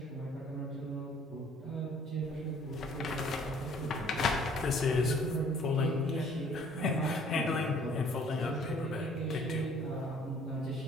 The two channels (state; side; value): normal; both; correlation 0.57